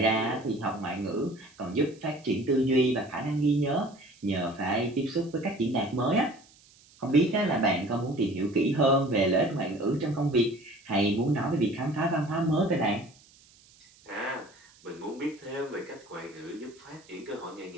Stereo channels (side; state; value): right; noise; hiss, 27 dB below the sound